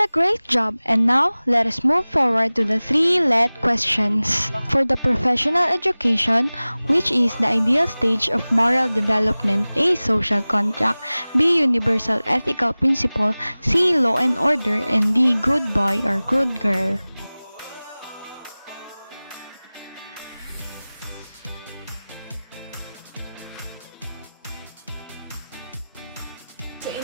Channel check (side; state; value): both; inverted; correlation -0.99